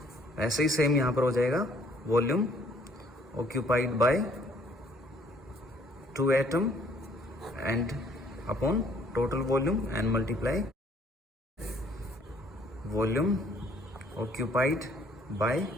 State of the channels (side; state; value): both; normal; correlation 0.61